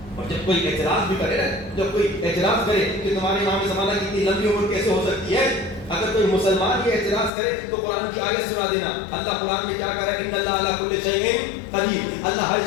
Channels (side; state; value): right; drops out; at 7.3 s